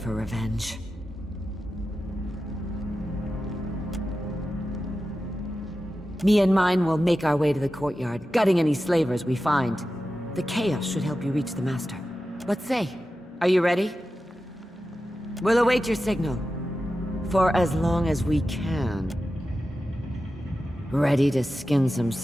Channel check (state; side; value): normal; both; correlation 0.92